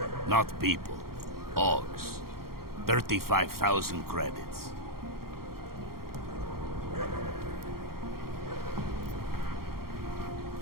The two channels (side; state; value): left; late; 0.93 ms